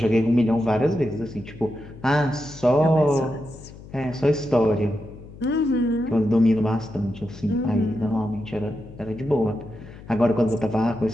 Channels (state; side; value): noise; left; hum, 17 dB below the sound